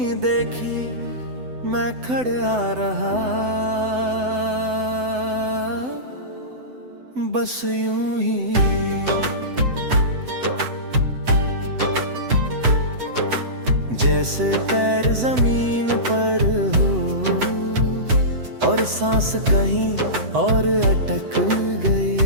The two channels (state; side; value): late; left; 7.9 ms